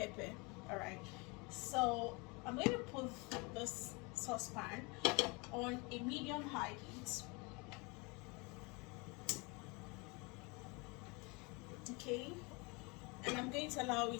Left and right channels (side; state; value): right; quieter; 28.4 dB